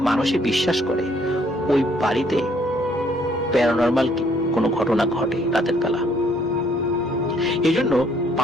মানুষই বিশ্বাস করে ওই বাড়িতে প্যারানরমাল কোনো ঘটনা ঘটে রাতের বেলা। এই জন্য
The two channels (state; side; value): normal; both; correlation 0.66